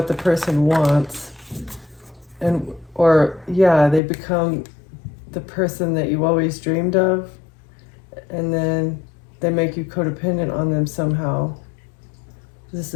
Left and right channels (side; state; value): right; drops out; at 4.0 s